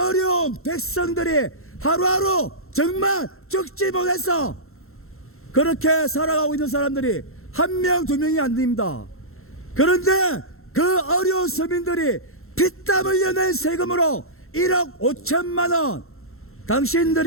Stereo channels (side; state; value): right; late; 0.62 ms